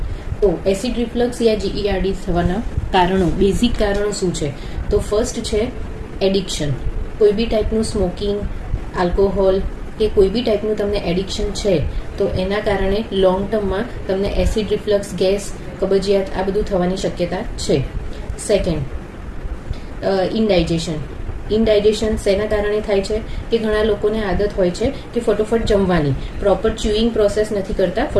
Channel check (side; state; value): both; identical; correlation 1.00